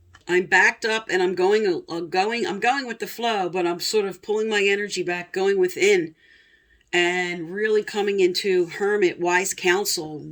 I'm backed up and I'm going with the flow, but I'm sort of pulling my energy back, going within and really coming into Hermit, wise counsel,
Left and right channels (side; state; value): both; identical; correlation 1.00